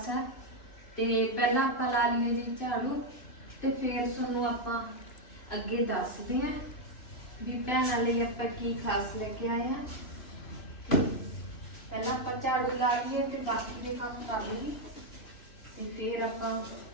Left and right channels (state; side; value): late; right; 3.0 ms